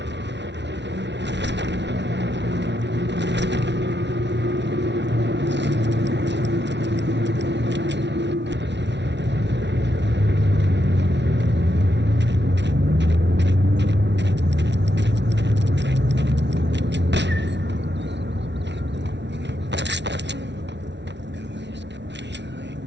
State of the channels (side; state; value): left; late; 0.51 ms